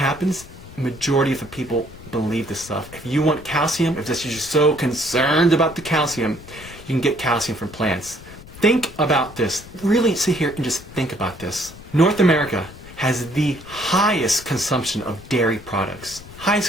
Majority of the people believe this stuff. If you want calcium, if you're so concerned about the calcium, you can get calcium from plants. Think about this. Really sit here and just think about this. North America has the highest consumption of dairy products.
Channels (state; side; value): noise; left; rumble, 17 dB below the sound